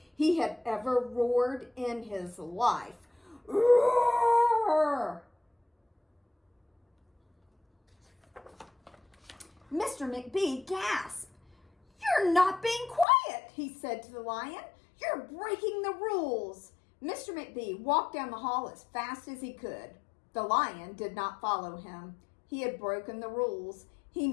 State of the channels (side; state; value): right; drops out; at 13.1 s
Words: he had ever roared in his life. Roar! Mr. McBee gasped. "You're not being quiet," he said to the lion. "You're breaking the rules." Mr. McBee walked down the hall as fast as he could. The lion did not follow him. He had broken the rules. He